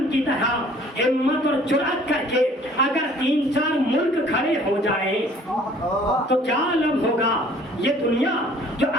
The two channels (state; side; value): normal; both; correlation 0.54